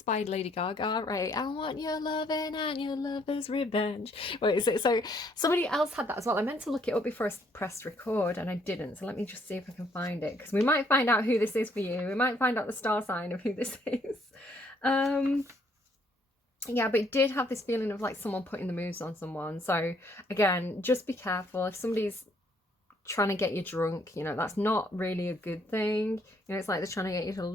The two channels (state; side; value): normal; both; correlation 0.67